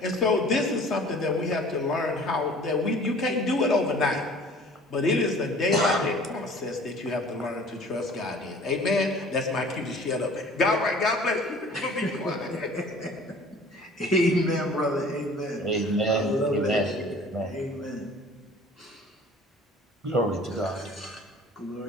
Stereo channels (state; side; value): normal; both; correlation 0.48